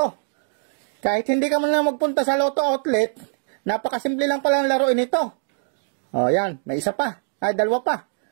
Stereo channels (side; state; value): left; silent; digital silence